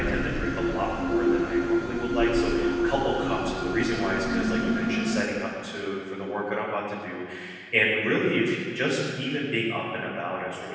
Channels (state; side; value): identical; both; correlation 1.00